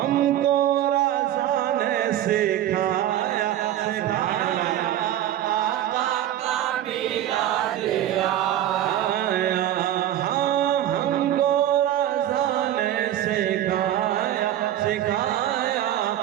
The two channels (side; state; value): left; quieter; 12.1 dB